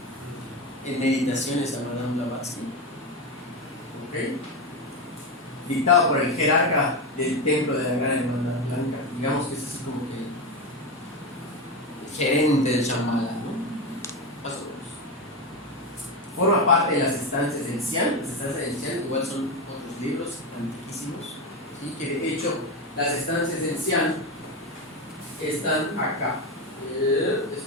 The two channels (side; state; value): both; normal; correlation 0.15